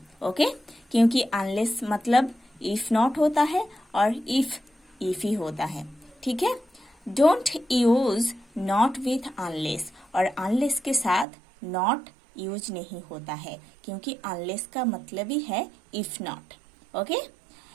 ओके? क्योंकि unless मतलब if not होता है और if ही होता है. ठीक है? Don't use not with unless, और unless के साथ not यूज नहीं होता है क्योंकि unless का मतलब ही है if not. Okay?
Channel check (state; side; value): drops out; left; at 11.2 s